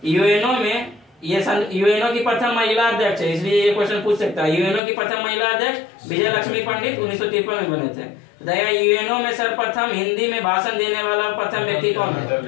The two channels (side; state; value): right; drops out; at 4.8 s